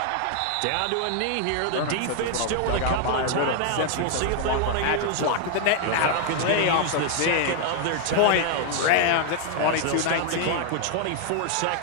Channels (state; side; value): different; both; correlation 0.00